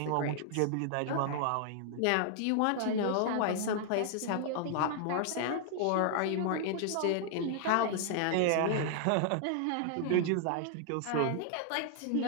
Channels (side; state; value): both; different; correlation 0.00